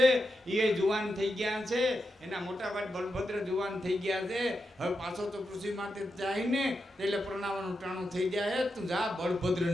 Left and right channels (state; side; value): normal; both; correlation 0.87